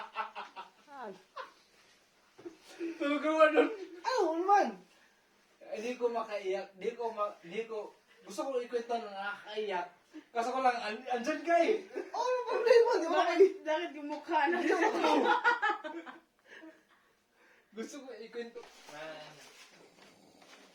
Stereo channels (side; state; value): both; identical; correlation 1.00